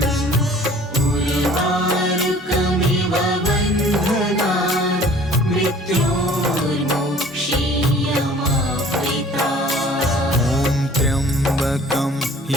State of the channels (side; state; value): both; normal; correlation 0.51